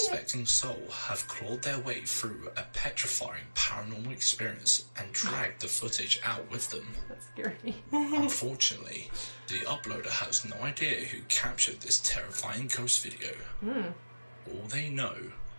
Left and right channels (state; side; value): inverted; both; correlation -1.00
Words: soul have clawed their way through a petrifying paranormal experience and dragged the footage out with them. That's scary. Unfortunately, the uploader has no idea who captured this terrifying ghost video. All they know